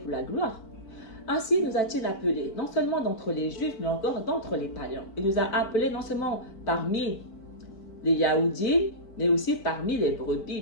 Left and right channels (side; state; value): right; late; 4.5 ms